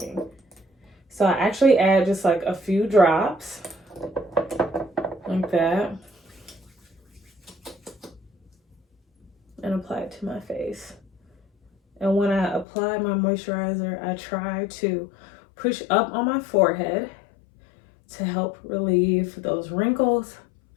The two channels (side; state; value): right; drops out; at 12.7 s